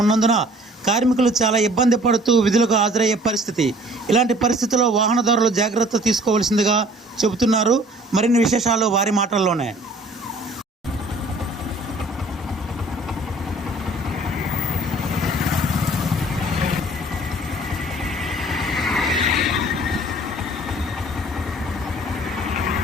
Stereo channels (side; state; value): both; normal; correlation 0.53